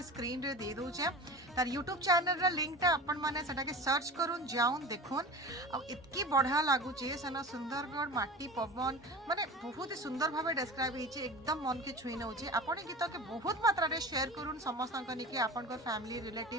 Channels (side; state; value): both; normal; correlation 0.34